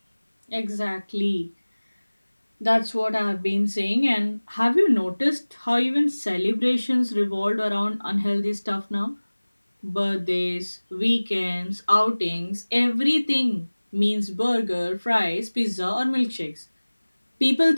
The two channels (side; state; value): both; inverted; correlation -1.00